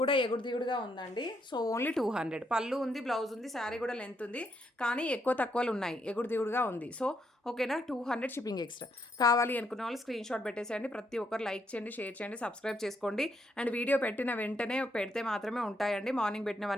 కూడా ఎగుడు దిగుడుగా ఉందండి. So only 200. పళ్ళు ఉంది, బ్లౌజ్ ఉంది, శారీ కూడా లెంత్ ఉంది. కానీ ఎక్కువ తక్కువలు ఉన్నాయి. ఎగుడు దిగుడుగా ఉంది. సో ఓకేనా, 200 షిప్పింగ్ ఎక్స్ట్రా. కావాలి అనుకున్న వాళ్ళు స్క్రీన్ షాట్ పెట్టేసేయండి. ప్రతి ఒక్కరు లైక్ చేయండి, షేర్ చేయండి, సబ్స్క్రైబ్ చేసుకోండి. అండ్ వీడియో పెట్టిన వెంటనే పెడితే మాత్రమే ఉంటాయండి. మార్నింగ్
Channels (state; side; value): normal; both; correlation 0.76